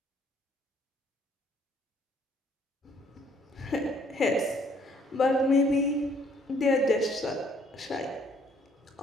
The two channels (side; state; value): both; normal; correlation 0.63